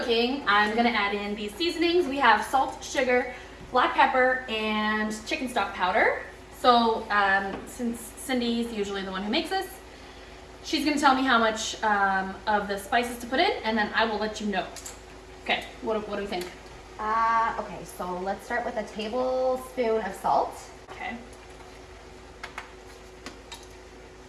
I'm gonna add in these seasonings. We have salt, sugar, black pepper, and chicken stock powder. So since Cindy's usually the one who makes this, she's gonna tell me how much of the spices to put in, and then I will let you know. Okay, what do we think? Okay, so let's start with a tablespoon of salt. Okay.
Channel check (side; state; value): both; identical; correlation 1.00